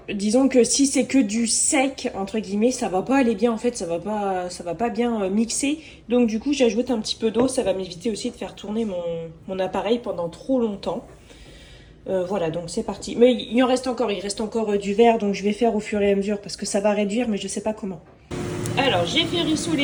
disons que si c'est que du sec, entre guillemets, ça va pas aller bien, en fait, ça va pas bien mixer. Donc du coup, j'ajoute un petit peu d'eau, ça va m'éviter aussi de faire tourner mon appareil pendant trop longtemps. Voilà, donc c'est parti. Mais il reste encore du verre, donc je vais faire au fur et à mesure parce que ça va réduire, mais je sais pas comment. Alors, j'ai fait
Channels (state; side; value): identical; both; correlation 1.00